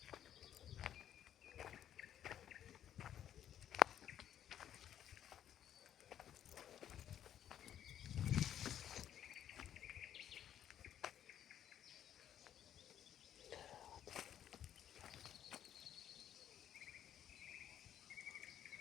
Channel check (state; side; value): quieter; right; 10.4 dB